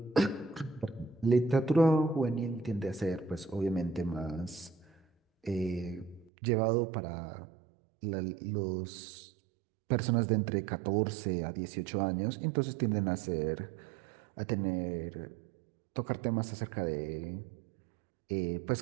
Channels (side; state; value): left; drops out; at 6.3 s